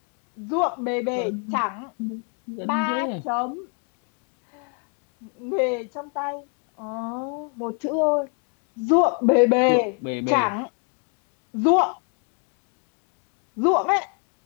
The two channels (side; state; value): right; quieter; 38.3 dB